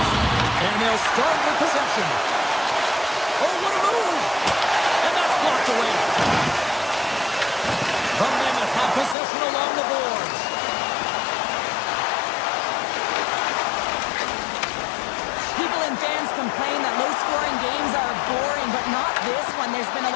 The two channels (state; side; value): drops out; right; at 9.2 s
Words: And they'll start with possession. Oh, what a move! And that's blocked away. The Mammoth have possession along the boards. People and fans complain that low-scoring games are boring, but not this one. There's been a